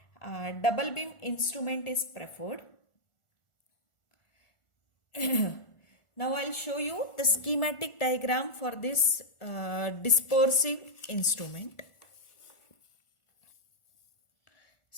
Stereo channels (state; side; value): late; right; 1.4 ms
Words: double beam instrument is preferred. Now I'll show you the schematic diagram for this dispersive instrument.